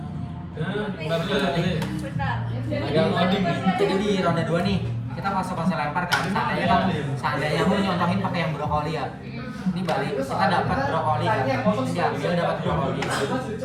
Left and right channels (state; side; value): identical; both; correlation 1.00